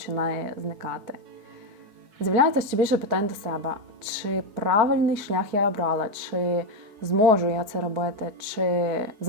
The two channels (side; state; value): left; late; 4.6 ms